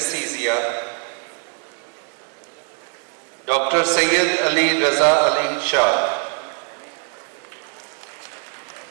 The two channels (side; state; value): left; quieter; 38.8 dB